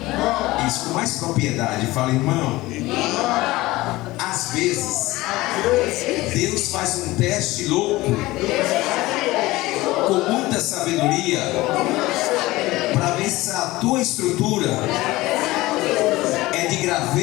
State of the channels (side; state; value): right; quieter; 19.1 dB